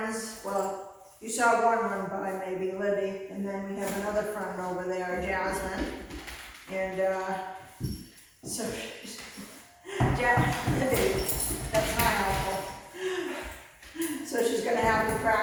Well, you saw one run by, maybe Libby, and then we have another friend over there, Jasmine. And so she's, Libby, that's not helpful. So she's gonna have to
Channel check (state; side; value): identical; both; correlation 1.00